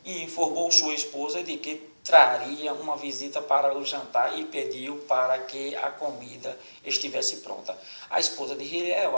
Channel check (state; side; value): inverted; both; correlation -1.00